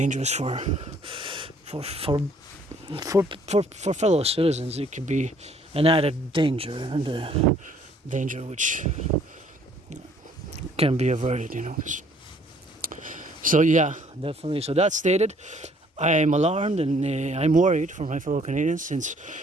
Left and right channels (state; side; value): normal; both; correlation 0.61